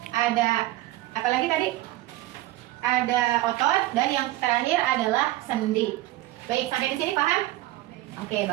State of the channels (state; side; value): quieter; left; 16.6 dB